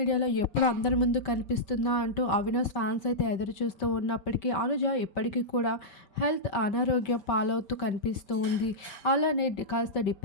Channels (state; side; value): late; right; 5.2 ms